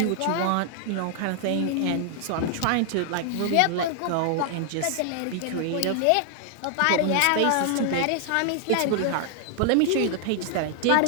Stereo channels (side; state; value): both; different; correlation 0.00